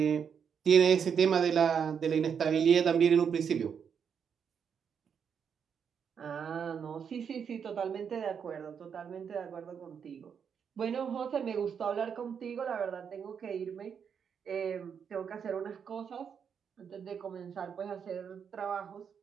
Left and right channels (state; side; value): quieter; left; 7.2 dB